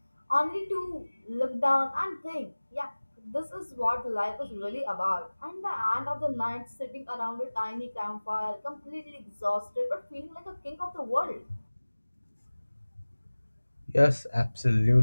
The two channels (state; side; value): inverted; both; correlation -1.00